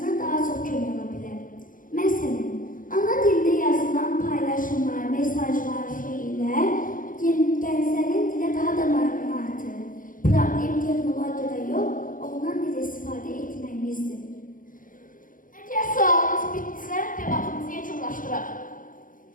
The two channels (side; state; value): right; late; 0.39 ms